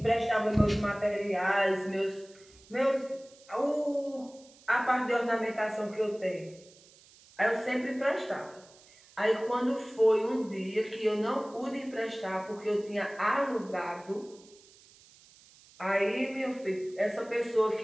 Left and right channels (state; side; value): noise; right; hiss, 25 dB below the sound